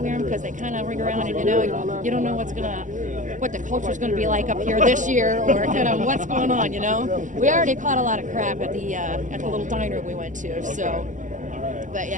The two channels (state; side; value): late; left; 0.37 ms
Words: them? Because they kind of ring around, and, you know, you don't know what the culture's going to be like up here this year, or kind of what's going on, you know? We already caught a lot of crap at the little diner we went to, so. All right. But